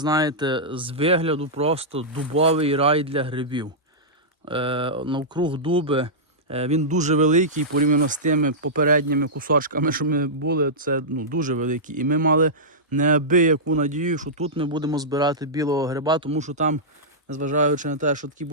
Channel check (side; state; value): both; normal; correlation -0.13